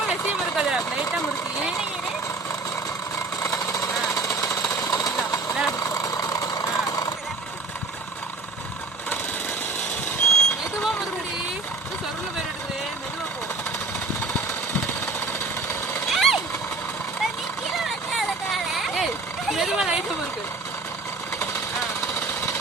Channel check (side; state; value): left; quieter; 3.6 dB